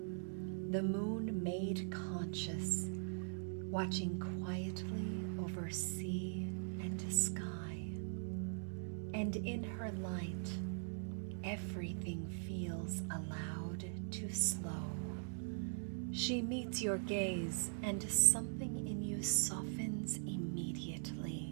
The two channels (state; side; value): silent; left; digital silence